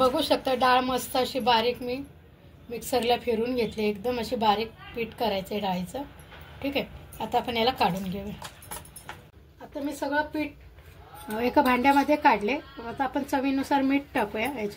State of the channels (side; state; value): both; identical; correlation 1.00